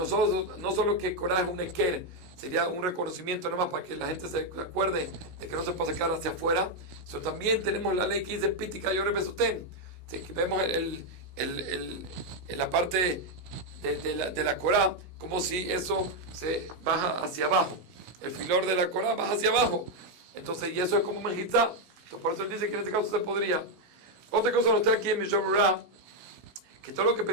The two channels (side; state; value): left; late; 16 ms